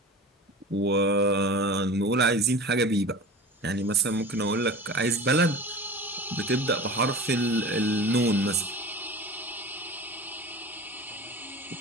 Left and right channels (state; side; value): normal; both; correlation 0.35